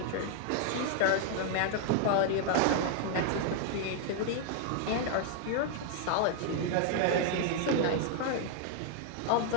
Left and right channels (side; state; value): both; different; correlation 0.00